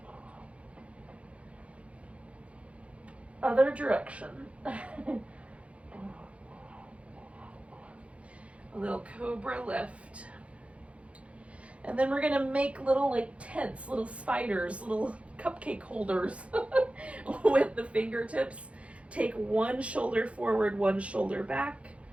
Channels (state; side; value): late; left; 0.063 ms